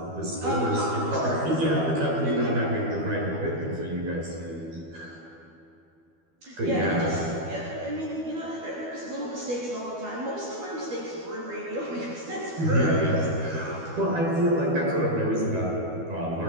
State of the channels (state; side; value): late; left; 12 ms